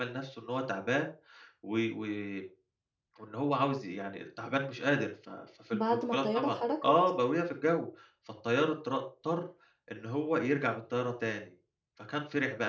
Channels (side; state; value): both; identical; correlation 1.00